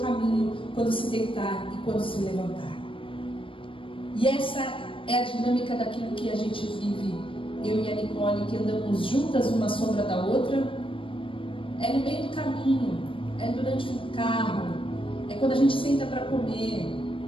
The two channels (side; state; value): right; late; 0.25 ms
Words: quando se deitar e quando se levantar. E essa é a dinâmica daquilo que a gente vive, eu e a Nicole, que andamos juntas, uma sombra da outra. É no meio do caminho, é durante o carro, é quando a gente senta para comer,